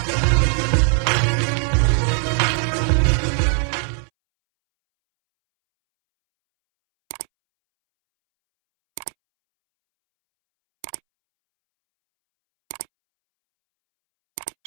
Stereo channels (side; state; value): left; silent; 66 dB below the other